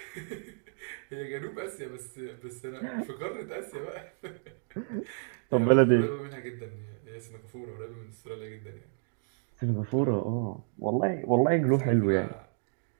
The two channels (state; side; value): silent; left; digital silence